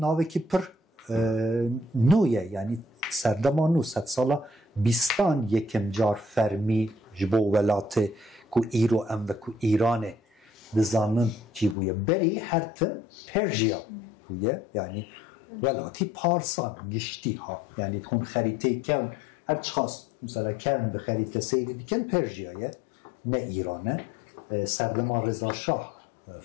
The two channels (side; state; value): right; drops out; at 11.8 s